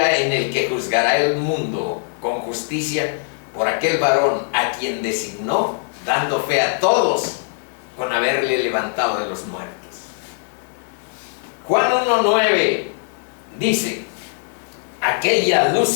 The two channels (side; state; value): right; silent; digital silence